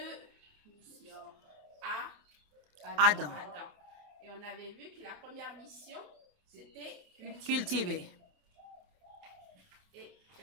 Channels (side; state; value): left; late; 28 ms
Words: missions à Adam. Et on avait vu que la première mission, c'était Cultiver. Et